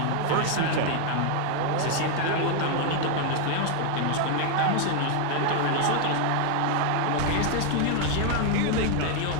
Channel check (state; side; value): different; both; correlation 0.00